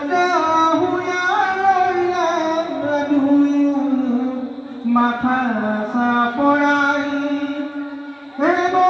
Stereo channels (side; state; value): both; identical; correlation 1.00